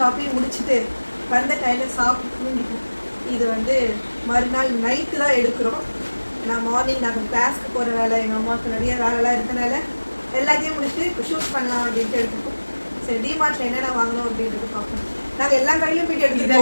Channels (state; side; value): inverted; both; correlation -1.00